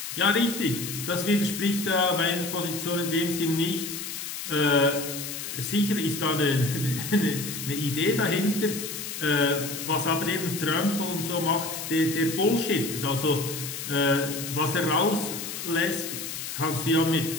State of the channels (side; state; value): left; noise; hiss, 7 dB below the sound